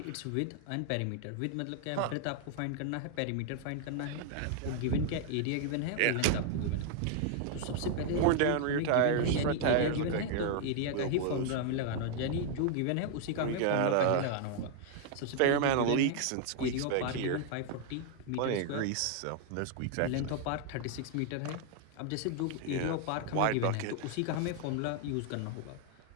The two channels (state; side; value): different; both; correlation 0.00